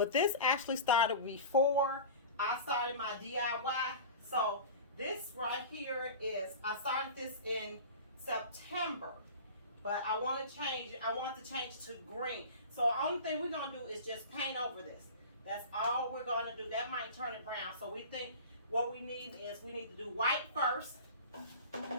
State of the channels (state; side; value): inverted; both; correlation -0.34